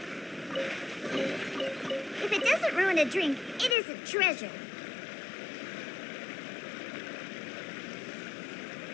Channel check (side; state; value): right; drops out; at 3.8 s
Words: If it doesn't ruin a drink, it is a treasure.